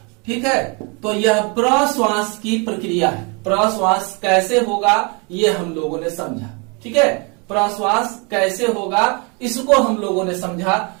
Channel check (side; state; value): left; quieter; 32.2 dB